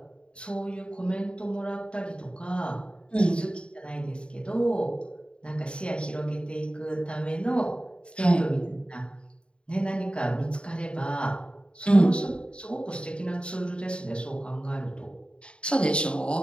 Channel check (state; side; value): late; right; 0.055 ms